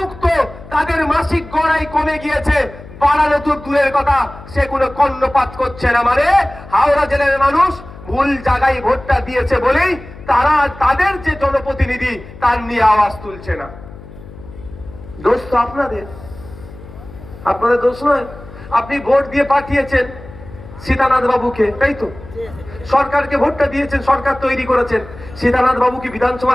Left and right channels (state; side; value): noise; left; hum, 17 dB below the sound